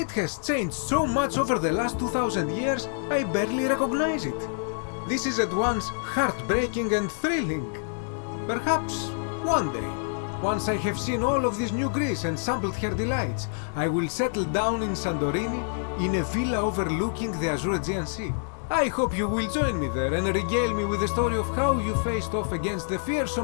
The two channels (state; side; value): silent; right; 60 dB below the other